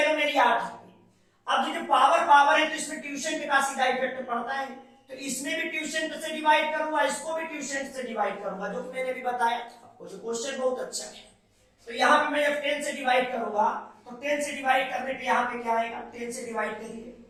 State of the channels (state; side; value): identical; both; correlation 1.00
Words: मेरी 8 है। अब जो पावर है तो इसमें ट्यूशन का सीधा इफेक्ट पड़ता है, तो इसमें भी ट्यूशन से डिवाइड करूंगा, इसको भी ट्यूशन से डिवाइड करूंगा, जो मैंने भी बताया था। वो जो क्वेश्चन बहुत अच्छा है। तो यहाँ पे मैं जब 10 से डिवाइड करूंगा तो 10 से डिवाइड करने पे यहाँ पे क्या आएगा, 10 से डिवाइड करिए